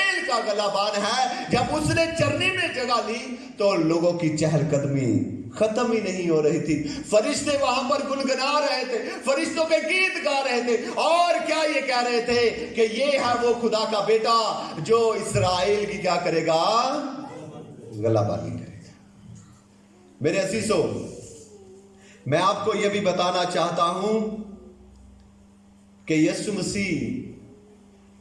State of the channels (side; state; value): both; identical; correlation 1.00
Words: کا غلبان ہے، جب اس نے چرنی میں جگہ لی تو لوگوں کی چہل قدمی ختم ہی نہیں ہو رہی تھی۔ فرشتے وہاں پر گنگنا رہے تھے، فرشتوں کے گیت گا رہے تھے، اور کیا یہ کہہ رہے تھے کہ یہ ہے وہ خدا کا بیٹا جو اسرائیل کی کیا کرے گا؟ غلبانی کرے گا۔ میرے عزیزو، میں آپ کو یہ بھی بتانا چاہتا ہوں کہ یسوع مسیح